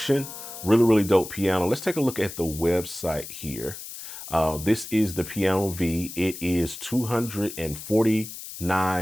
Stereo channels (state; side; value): noise; left; hiss, 11 dB below the sound